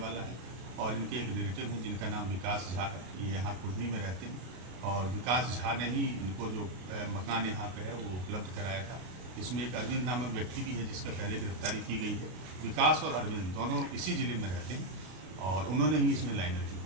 है और इनके एक रिलेटिव हैं जिनका नाम विकास झा है, ये यहाँ कुर्नी में रहते हैं और विकास झा ने ही इनको जो मकान यहाँ पे है वो उपलब्ध कराया था। इसमें एक अरविंद नामक व्यक्ति भी है जिसका पहले गिरफ्तारी की गई है। विकास और अरविंद दोनों इसी जिले में रहते हैं और उन्होंने ही इसमें लाइनर की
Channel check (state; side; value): late; left; 33 ms